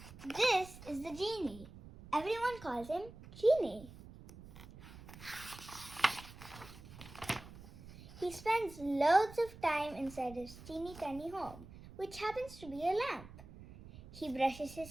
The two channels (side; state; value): right; noise; rumble, 17 dB below the sound